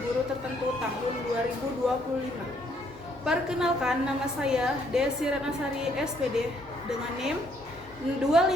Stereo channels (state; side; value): normal; both; correlation 0.68